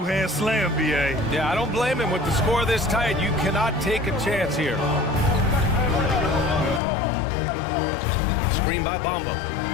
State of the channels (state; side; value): drops out; right; at 6.8 s